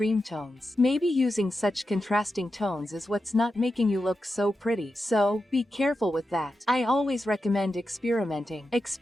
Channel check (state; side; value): normal; both; correlation 0.89